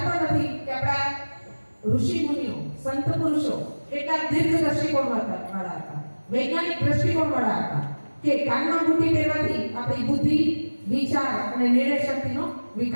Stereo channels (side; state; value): both; inverted; correlation -1.00